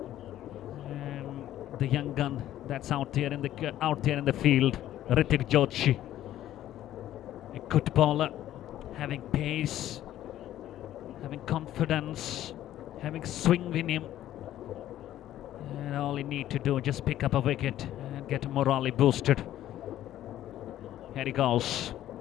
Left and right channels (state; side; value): quieter; right; 12.8 dB